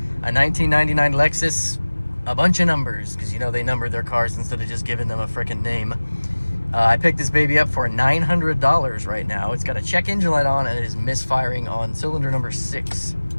A 1999 Lexus, a bunch of numbers, because you know they numbered their cars instead of just giving them a freaking name. I picked this baby up for $900 right now. It's got a check engine light on, and it is misfiring on cylinder number 6.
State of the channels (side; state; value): both; inverted; correlation -1.00